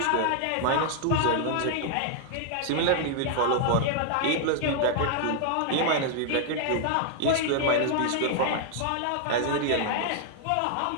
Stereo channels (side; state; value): both; different; correlation 0.00